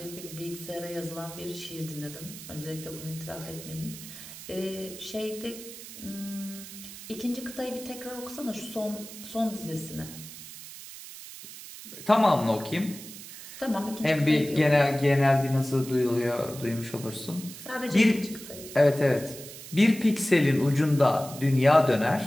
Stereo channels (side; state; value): right; noise; hiss, 14 dB below the sound